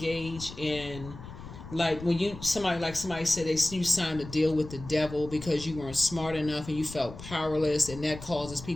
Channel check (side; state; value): left; noise; rumble, 13 dB below the sound